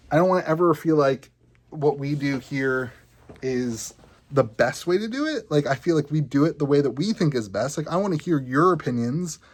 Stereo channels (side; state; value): both; identical; correlation 1.00